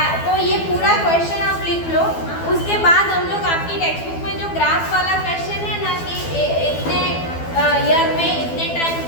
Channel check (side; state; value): right; late; 12 ms